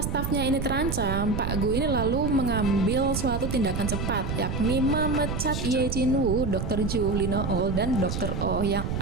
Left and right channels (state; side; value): noise; right; rumble, 3 dB below the sound